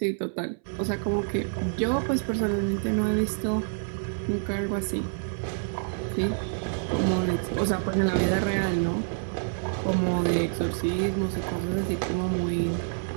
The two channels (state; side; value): silent; left; 60 dB below the other